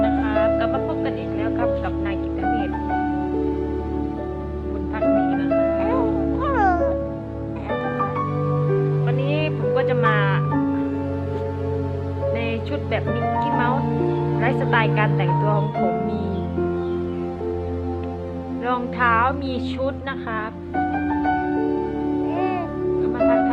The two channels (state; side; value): identical; both; correlation 1.00